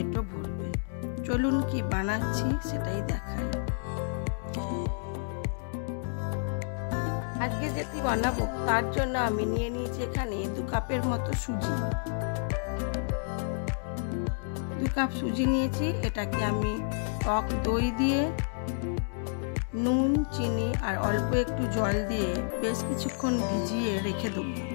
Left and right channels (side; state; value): right; silent; digital silence